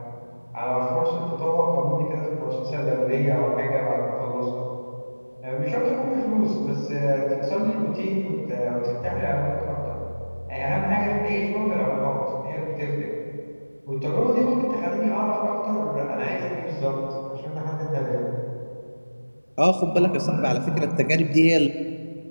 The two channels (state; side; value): inverted; both; correlation -1.00